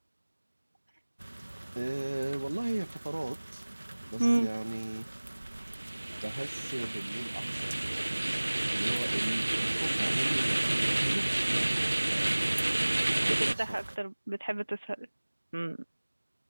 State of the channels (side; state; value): both; inverted; correlation -1.00